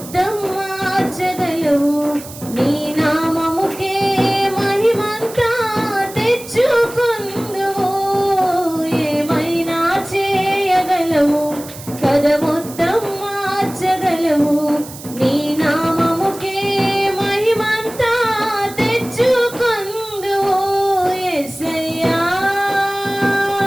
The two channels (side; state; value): right; noise; hiss, 15 dB below the sound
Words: మార్చగలవు, నీ నామముకే మహిమంతా తెచ్చుకొందువు. ఏమైనా చేయగలవు, కథ మొత్తం మార్చగలవు, నీ నామముకే మహిమంతా తెచ్చుకొందువు. యేసయ్యా